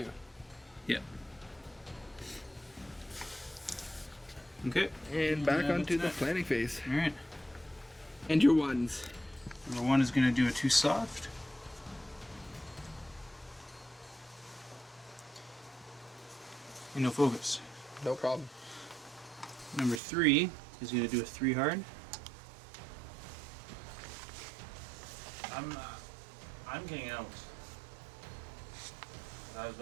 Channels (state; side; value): drops out; left; at 20.0 s